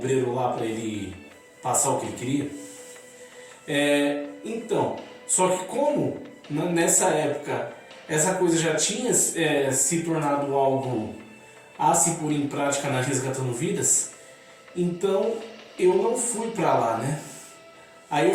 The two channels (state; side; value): identical; both; correlation 1.00